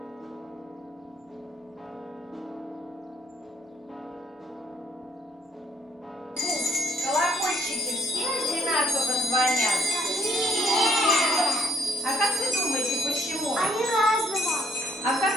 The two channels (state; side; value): normal; both; correlation 0.67